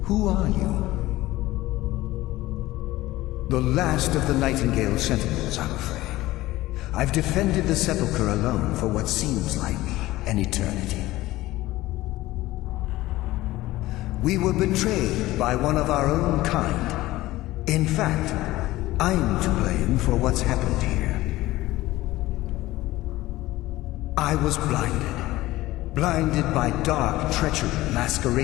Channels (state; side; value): quieter; right; 17.4 dB